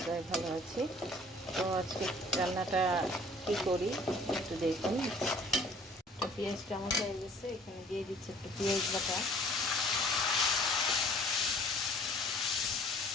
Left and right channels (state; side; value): normal; both; correlation 0.53